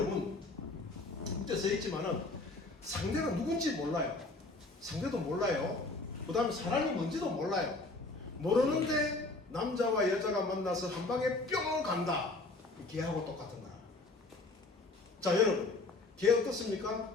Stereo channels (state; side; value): quieter; right; 3.2 dB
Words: 밑에 써있지만은 상대가 누군지 몰라요. 상대도 몰라요. 그 다음에 사랑이 뭔지도 몰라요. 모르는데 남자와 여자가 만나서 한 방에 뿅 간다. 개하고 똑같은 거라. 자, 여러분, 개